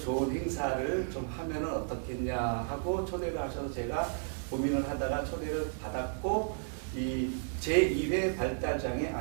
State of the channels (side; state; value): left; silent; digital silence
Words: 행사를 좀 하면은 어떻겠냐 하고 초대를 하셔서 제가 고민을 하다가 초대를 받았고 이 제2회 발달장애